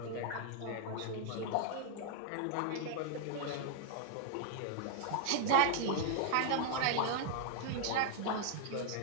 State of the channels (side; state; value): both; different; correlation 0.00